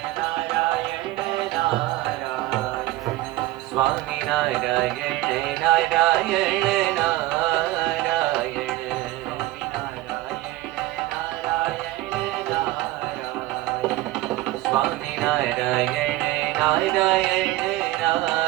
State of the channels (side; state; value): left; quieter; 17.1 dB